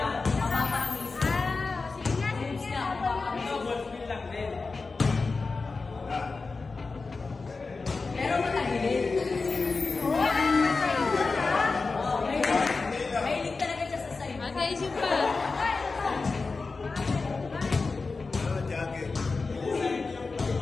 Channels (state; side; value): quieter; right; 4.1 dB